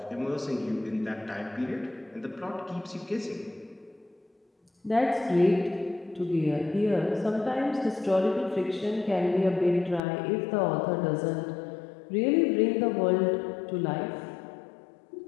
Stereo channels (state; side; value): drops out; right; at 10.0 s